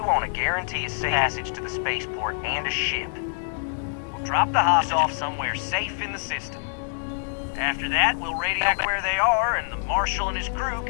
want to guarantee a safe passage to the spaceport and a ship. We'll drop the hostages off somewhere safe in the system. After that, we'll radio back where they are, and the Marshal and his crew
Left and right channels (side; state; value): right; silent; digital silence